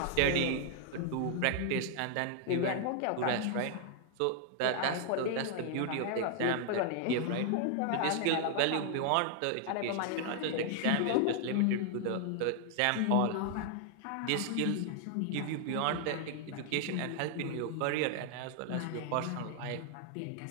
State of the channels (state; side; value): different; both; correlation 0.00